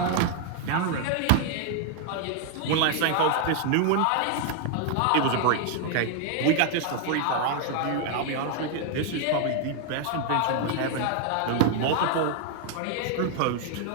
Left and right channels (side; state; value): both; different; correlation 0.00